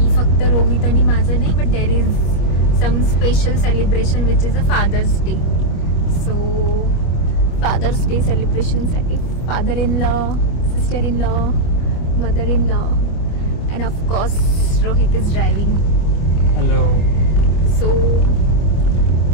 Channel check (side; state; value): right; late; 25 ms